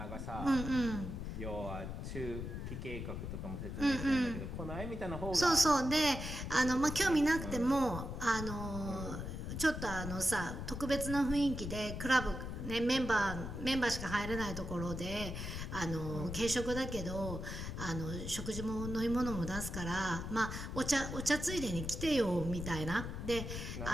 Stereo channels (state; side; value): noise; left; rumble, 6 dB below the sound